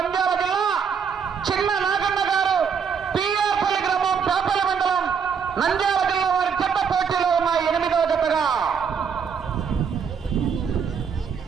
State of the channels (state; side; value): quieter; left; 6.7 dB